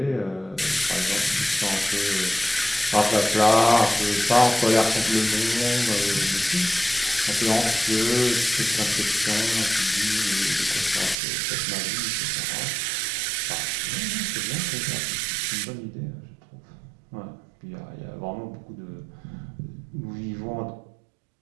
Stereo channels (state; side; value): drops out; left; at 11.2 s